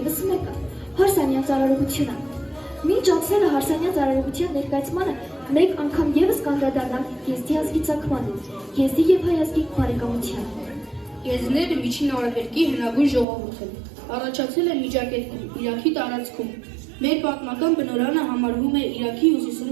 մեկը՝ հարսանյա ծառայողությունը։ Մինչ անցնելը հարսանյա ծառայողության ներկայացմանը մեկ անգամ ևս կանդրադառնանք GST ազգի ծագմանը, GST և հայ ազգի բարեկամությանը։ Եզիները միջին արևելքի հնագույն ժողովուրդ են, առաջացել են Միջագետքում, Իրաքի տարածքում։ Մեր պատմական բնօրրանը համարվում է Իրաքի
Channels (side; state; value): left; drops out; at 13.2 s